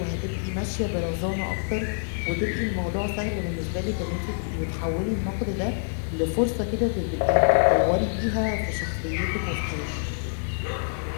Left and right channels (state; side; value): silent; right; digital silence